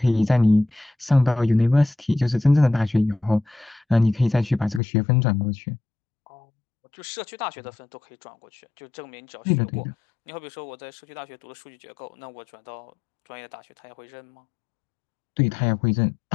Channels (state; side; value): drops out; right; at 4.8 s